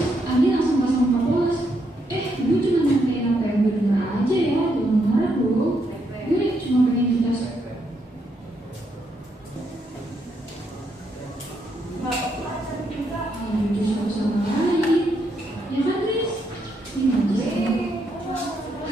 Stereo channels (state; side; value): normal; both; correlation 0.77